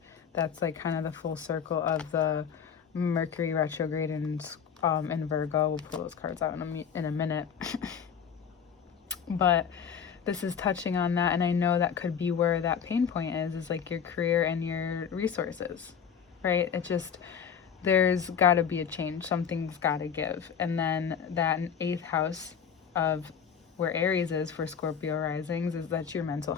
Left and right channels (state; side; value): quieter; right; 7.4 dB